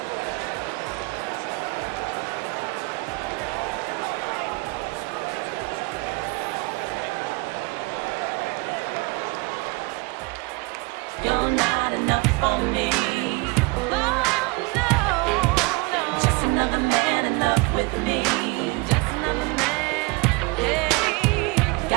You're not enough for me. Oh, no. Just another man in love with me. Just another man. Hey.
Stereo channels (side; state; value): left; quieter; 26.3 dB